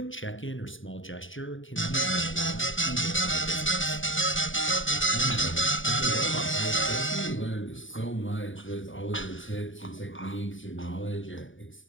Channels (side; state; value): right; late; 0.57 ms